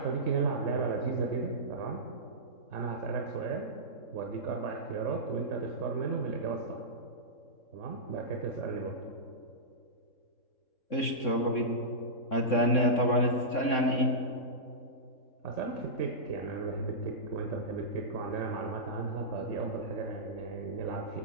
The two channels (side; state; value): right; late; 3.6 ms